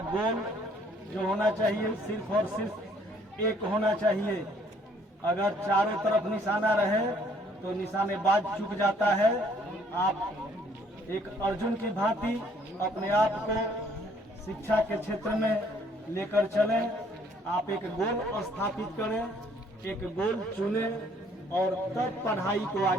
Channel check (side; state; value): both; normal; correlation 0.62